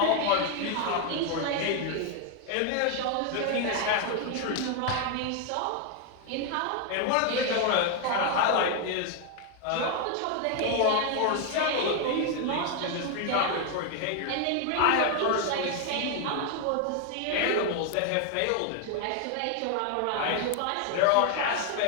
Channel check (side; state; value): both; different; correlation 0.00